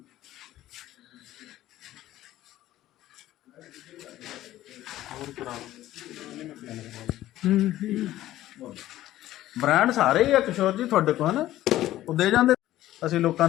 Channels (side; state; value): right; quieter; 14.4 dB